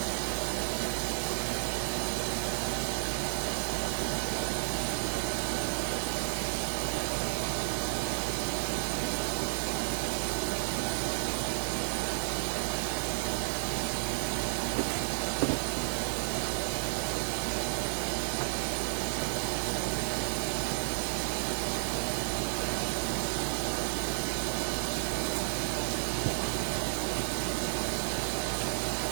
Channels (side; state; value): left; silent; digital silence